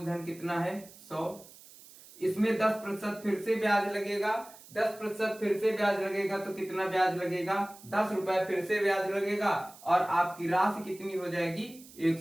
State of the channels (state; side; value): noise; right; hiss, 21 dB below the sound